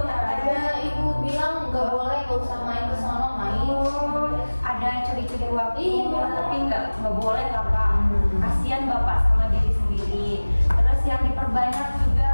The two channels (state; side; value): inverted; both; correlation -1.00